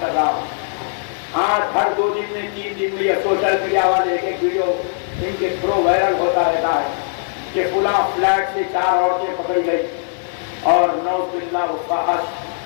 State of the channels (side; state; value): right; silent; 62 dB below the other